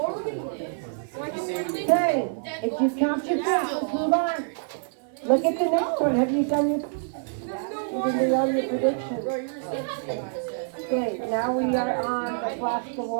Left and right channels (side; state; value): left; silent; 58 dB below the other